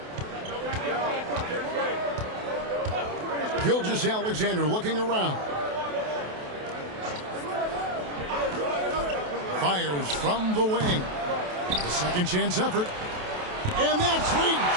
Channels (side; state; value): left; late; 28 ms